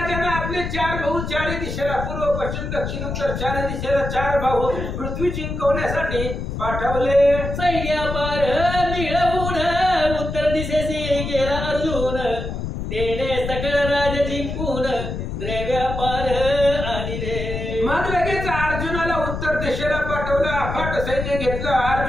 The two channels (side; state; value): left; noise; rumble, 5 dB below the sound